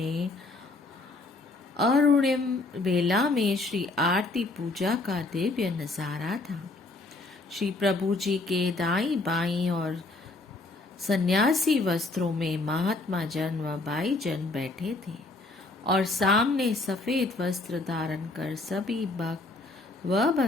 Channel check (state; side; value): quieter; right; 3.2 dB